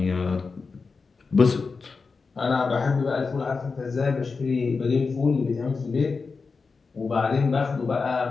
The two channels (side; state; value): right; quieter; 4.6 dB